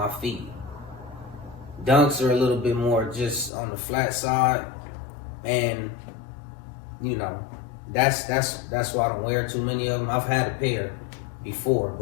feet. Dunks are a little bit more just on the flat side, and you know, that's why I don't wear too many of them. I've had a pair before,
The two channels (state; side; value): drops out; right; at 3.5 s